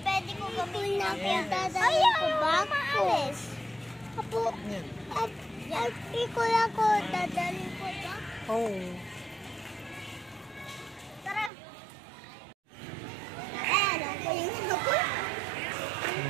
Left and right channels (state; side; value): drops out; left; at 11.5 s